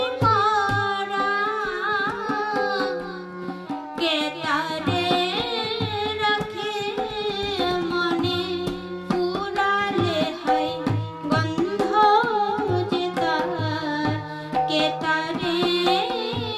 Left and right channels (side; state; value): both; identical; correlation 1.00